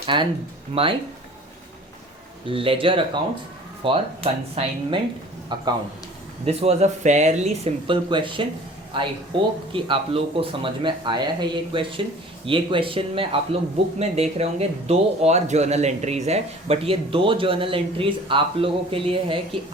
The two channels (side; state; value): both; normal; correlation 0.47